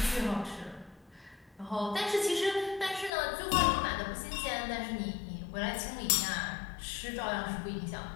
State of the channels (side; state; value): right; drops out; at 3.1 s